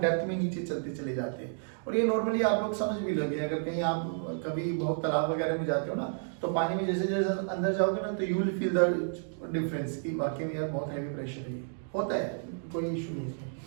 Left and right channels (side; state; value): left; silent; digital silence